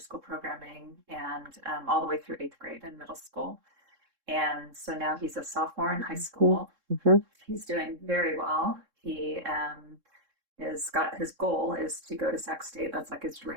programming, and all the way through 8th grade and middle school. And so now he's a sophomore in high school. He's doing very well. He is got his goal is to go to Sac State. That's like his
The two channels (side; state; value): left; late; 3.7 ms